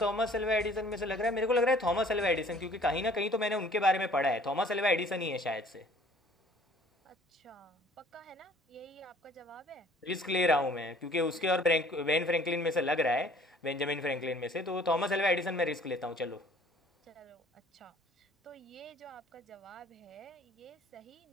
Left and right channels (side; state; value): both; normal; correlation 0.54